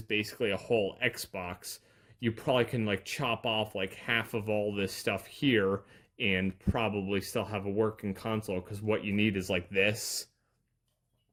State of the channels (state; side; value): identical; both; correlation 1.00